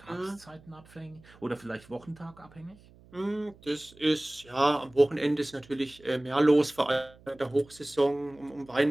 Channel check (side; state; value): right; noise; hum, 25 dB below the sound